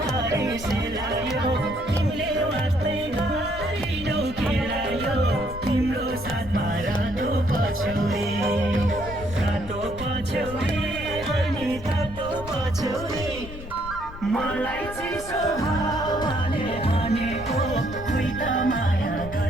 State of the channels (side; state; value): left; noise; rumble, 13 dB below the sound